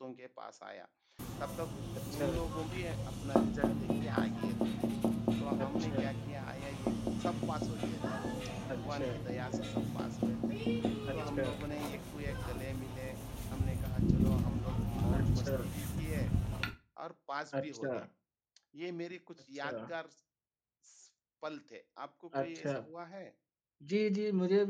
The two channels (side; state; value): both; identical; correlation 1.00